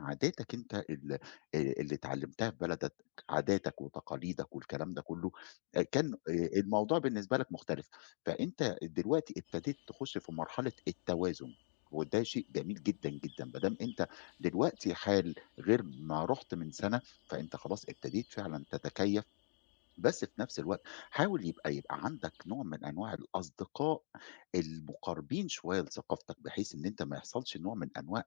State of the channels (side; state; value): right; silent; digital silence